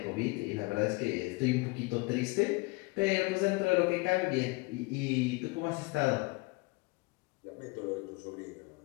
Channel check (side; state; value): right; quieter; 26.4 dB